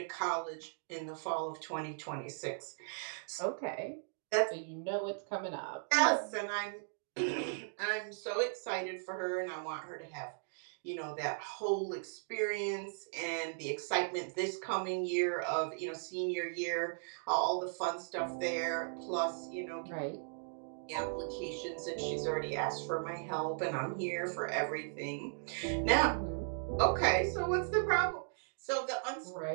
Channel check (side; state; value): left; silent; digital silence